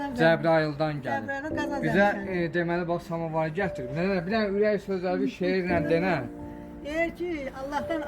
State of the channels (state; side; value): identical; both; correlation 1.00